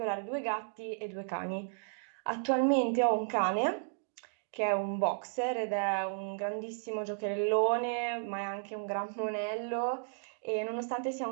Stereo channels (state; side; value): silent; left; digital silence